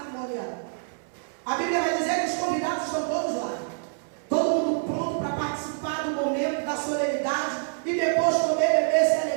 A Bíblia vai dizer que os convidados estão todos lá. Todo mundo pronto para participar do momento da solenidade e depois comer, beber, se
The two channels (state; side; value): silent; left; 61 dB below the other